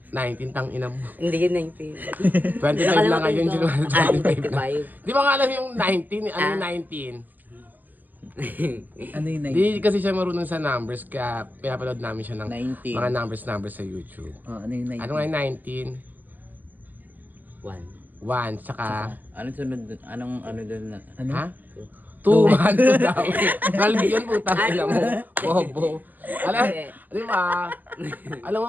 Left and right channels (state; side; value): late; left; 0.087 ms